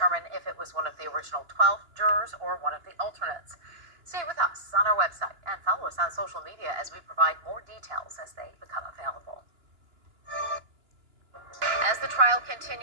if it was one of the original 12 jurors or one of the alternates. Stay with us on our website and follow us on social media as we provide more details as they become available. As the trial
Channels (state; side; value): late; left; 2.9 ms